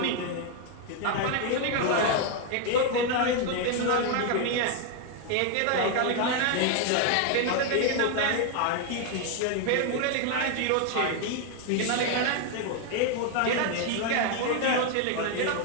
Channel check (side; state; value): both; different; correlation 0.01